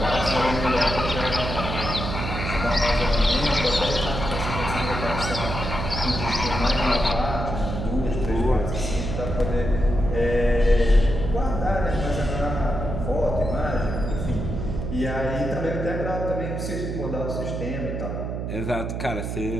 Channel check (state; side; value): noise; right; hum, 4 dB below the sound